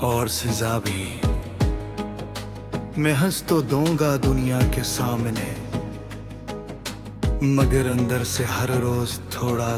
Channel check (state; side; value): identical; both; correlation 1.00